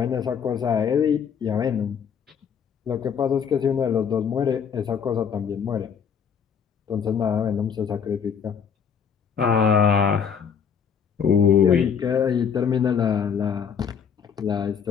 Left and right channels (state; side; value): quieter; right; 7.1 dB